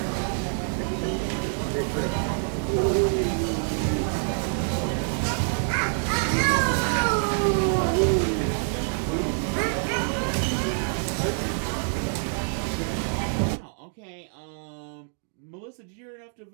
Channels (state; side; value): silent; left; 61 dB below the other